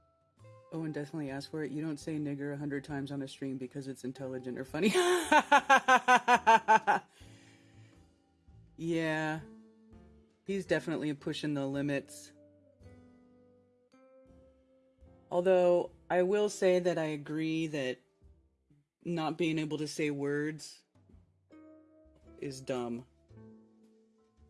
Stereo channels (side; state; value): both; identical; correlation 1.00